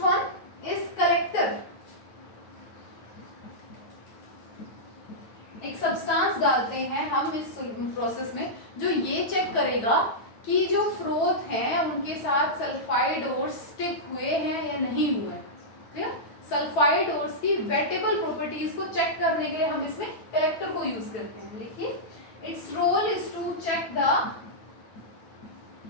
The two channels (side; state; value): right; late; 9.2 ms